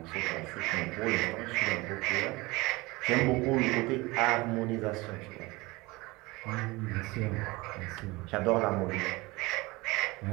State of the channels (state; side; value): quieter; left; 22.6 dB